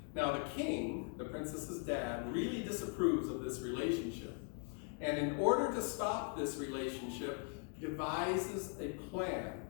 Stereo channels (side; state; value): right; quieter; 39.3 dB